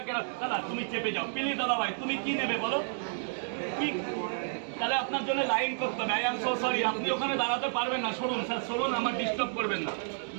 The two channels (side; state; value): left; silent; digital silence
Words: দাদা তুমি চেপে যাও প্লিজ। দাদা ভাই তুমি কি নেবে বলো? কি তাহলে আপনার জন্য লাইন করতে হবে। আই এম সো সরি, আপনি ওখানে দাঁড়াতে পারবেন না। সরুন স্যার, সরুন, আমার ডিস্টার্ব করবেন না।